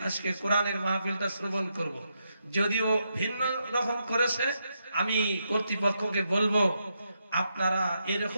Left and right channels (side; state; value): both; inverted; correlation -0.82